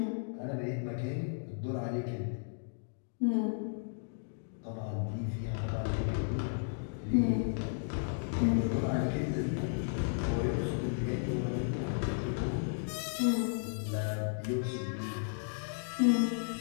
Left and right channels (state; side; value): silent; right; digital silence